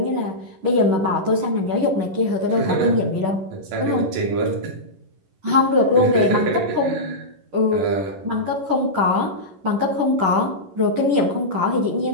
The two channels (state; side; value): late; left; 11 ms